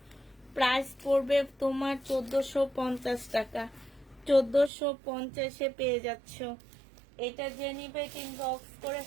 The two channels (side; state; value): left; drops out; at 4.7 s